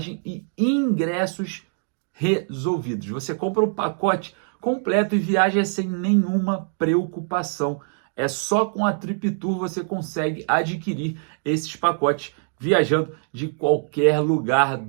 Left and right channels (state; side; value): silent; left; 56 dB below the other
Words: e ingressos resolvidos. Você compra o pacote completo e viaja sem nenhuma preocupação. É só com a Trip Tour você consegue adquirir esses pacotes viajando de qualquer lugar